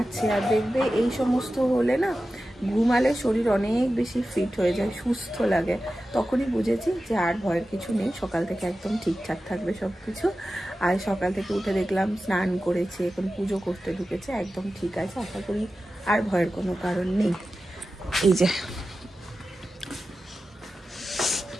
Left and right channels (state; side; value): normal; both; correlation 0.94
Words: আর দেখবে এই সমস্ত হলে না ঘুমালে শরীর অনেক বেশি ফিট হয়ে যায়, সুস্থ লাগে। তখনই বুঝেছি যে আর ভয়ের কিছু নেই, সকাল থেকে একদম ঠিকঠাক থাকবে সব কিছু। আর সকাল থেকে উঠে দেখলাম স্নান করেছে, এখন পুজো করতে ঢুকেছে, একদম ঠিক আছে। আশা করি আর ভয়ের কোনো কারণ নেই। এই যে